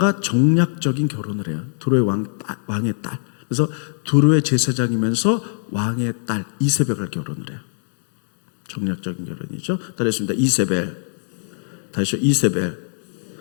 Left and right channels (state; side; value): silent; right; digital silence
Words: 정략적인 결혼을 해요. 두로의 왕의 딸. 그래서 두로의 제사장이면서 왕의 딸 이세벨을 결혼을 해요. 정략적인 결혼이죠. 따라했습니다. 이세벨. 다시요. 이세벨.